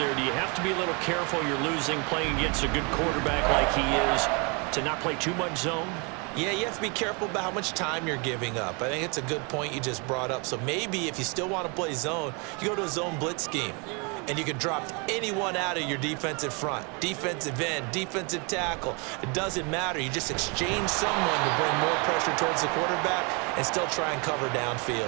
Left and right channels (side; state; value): left; quieter; 32.5 dB